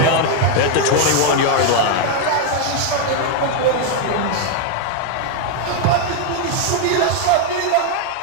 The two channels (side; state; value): both; different; correlation 0.01